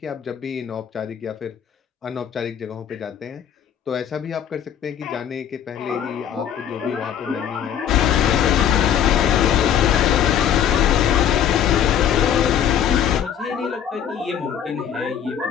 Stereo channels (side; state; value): right; quieter; 9.3 dB